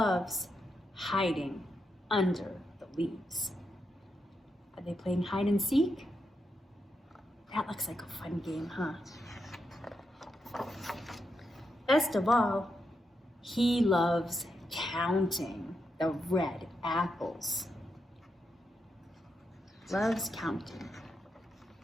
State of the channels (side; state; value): both; normal; correlation 0.84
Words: hiding under the leaves. Are they playing hide and seek? That looks like a fun game, huh? Best of all, he loves counting the red apples. Loves counting.